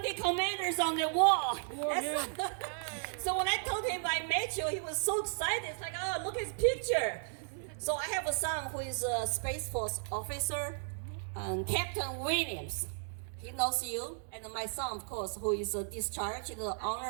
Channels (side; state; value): left; silent; digital silence